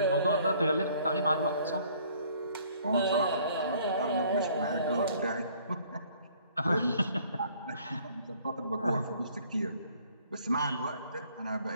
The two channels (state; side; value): inverted; both; correlation -0.59